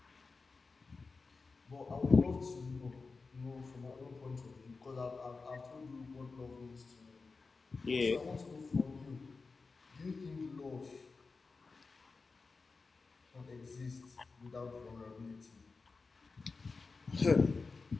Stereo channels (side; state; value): right; quieter; 4.2 dB